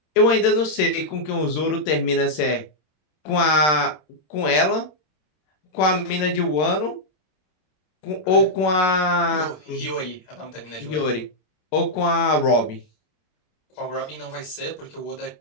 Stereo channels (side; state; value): right; late; 26 ms